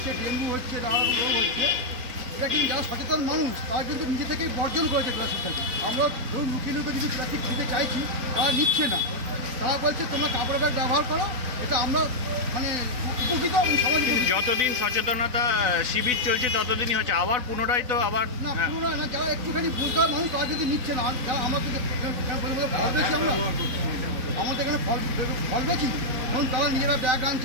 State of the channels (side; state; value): left; late; 4.0 ms